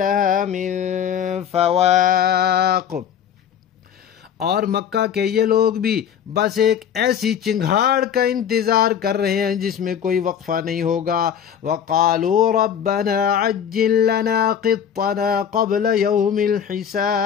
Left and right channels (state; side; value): quieter; right; 8.6 dB